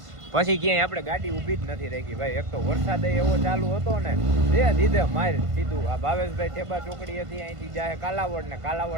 પછી ક્યાંય આપણે ગાડી ઊભી જ નથી રાખી ભાઈ એક તો વરસાદ એવો ચાલુ હતો ને દીધે માર સીધું આ ભાવેશભાઈ ઠેબા ચોકડી હતી અહીંથી જાય કાલાવડ ને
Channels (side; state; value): left; late; 1.5 ms